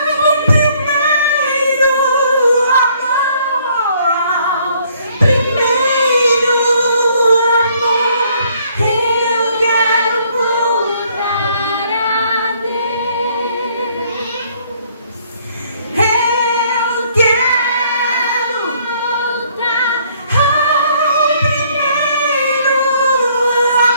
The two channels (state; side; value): inverted; both; correlation -0.64